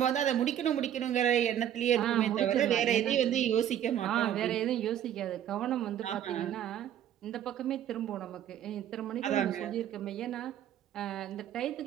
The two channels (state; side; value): quieter; left; 10.6 dB